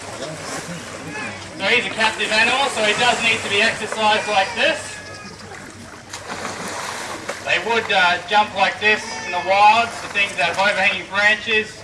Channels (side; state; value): both; identical; correlation 1.00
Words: So he's a captive animal, so he does need to be exercised like this. They would jump like this in the wild, the things that have overhanging branches.